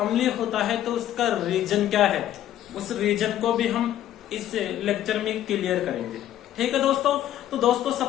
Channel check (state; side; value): quieter; right; 12.1 dB